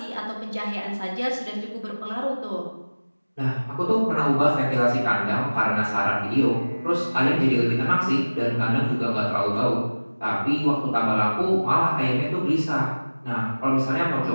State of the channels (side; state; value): both; inverted; correlation -1.00